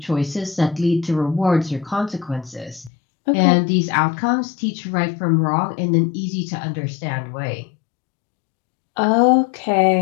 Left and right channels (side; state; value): right; drops out; at 2.9 s